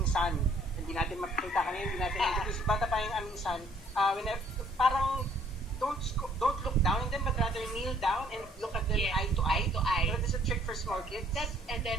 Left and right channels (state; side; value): normal; both; correlation 0.62